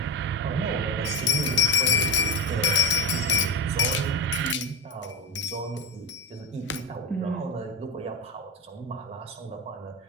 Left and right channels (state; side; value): normal; both; correlation 0.17